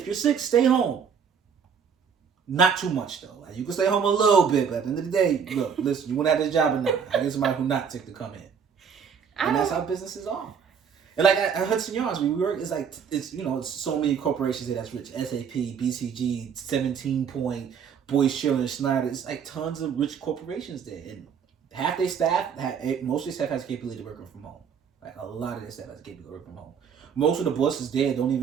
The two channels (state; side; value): quieter; left; 6.9 dB